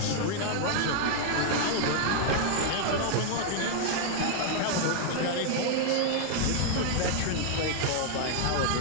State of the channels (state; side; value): different; both; correlation 0.00